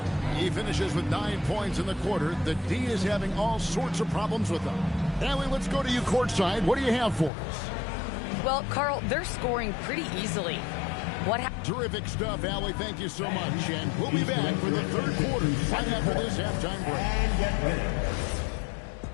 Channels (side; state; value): right; drops out; at 7.3 s